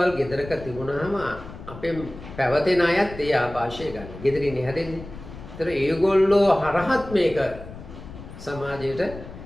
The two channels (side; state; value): left; noise; rumble, 14 dB below the sound